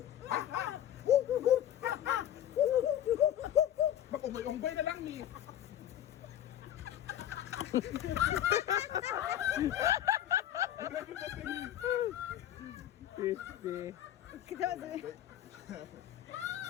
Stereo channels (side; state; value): right; quieter; 11.3 dB